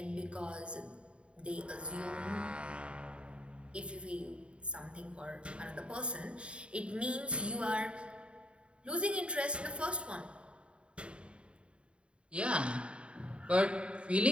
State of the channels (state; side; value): late; left; 0.056 ms